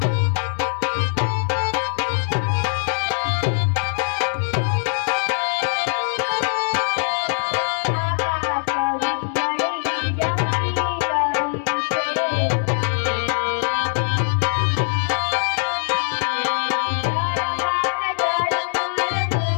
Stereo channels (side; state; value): right; silent; 64 dB below the other